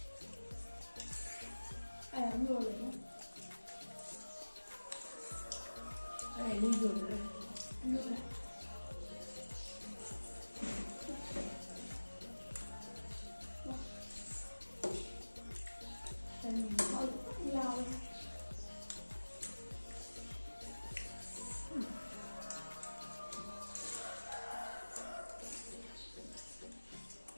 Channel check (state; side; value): inverted; both; correlation -1.00